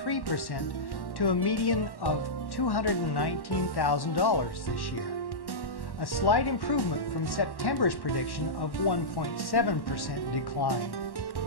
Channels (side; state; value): right; late; 1.1 ms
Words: to a median of $219,000 this year, a slight improvement from September's prediction of 1.7% decline.